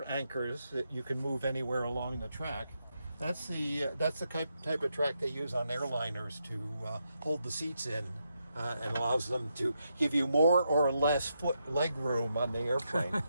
anchors that you can move anywhere along the track. That's the type of track they use on airliners to hold the seats in and allows them to give you more or less leg room on the airplane.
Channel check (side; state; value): both; inverted; correlation -0.82